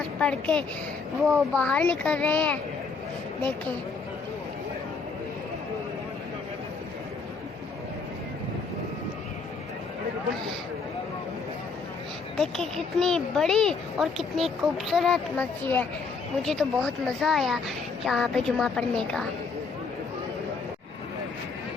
पढ़ के वो बाहर निकल रहे हैं। देखें देखें कितनी बड़ी और कितनी खूबसूरत मस्जिद है। मुझे तो बहुत मज़ा आया यहाँ पे जुमा पढ़ने का।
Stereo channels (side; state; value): right; quieter; 4.7 dB